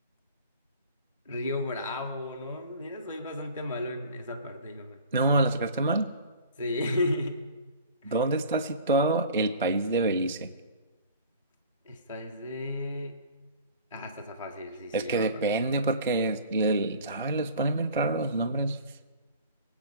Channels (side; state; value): both; inverted; correlation -0.44